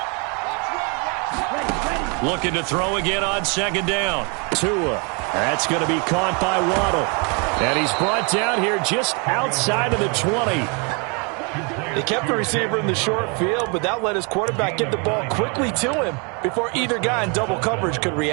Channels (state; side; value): quieter; left; 33.9 dB